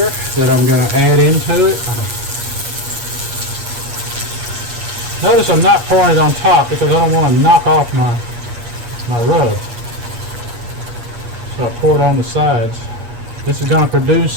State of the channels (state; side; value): late; left; 8.4 ms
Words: that I'm going to add into it. Notice I'm not pouring it on top because I don't want to knock off my rub. So I pour it on the sides. This is going to produce